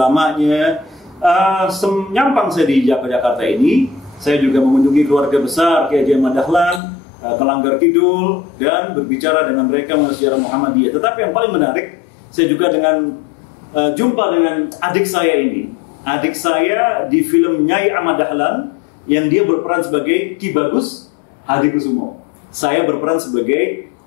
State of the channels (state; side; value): drops out; right; at 6.8 s